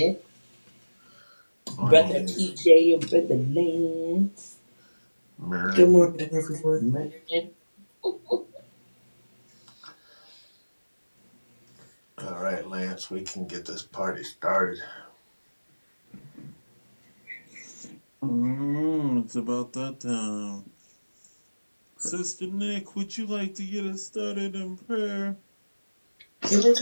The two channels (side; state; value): both; inverted; correlation -1.00